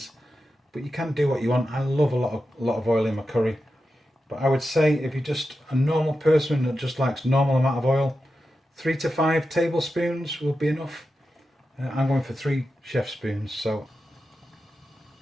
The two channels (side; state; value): both; normal; correlation 0.90